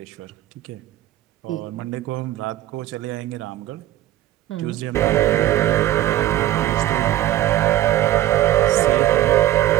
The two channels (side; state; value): left; quieter; 13.9 dB